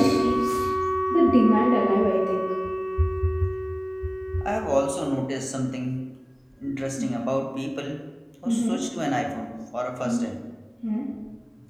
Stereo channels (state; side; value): identical; both; correlation 1.00